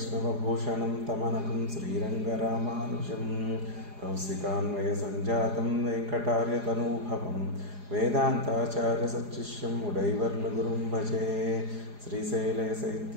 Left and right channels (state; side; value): late; left; 4.9 ms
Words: తమనకం శ్రీరంగరామానుజం. కౌశికాన్వయ సంజాతం వెంకటార్యతనూభవం వేదాంతాచార్య సచ్చిష్యం ఉడైవర్లగురుం భజే.